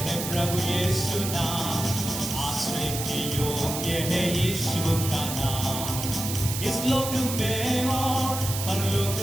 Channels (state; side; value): noise; right; hiss, 5 dB below the sound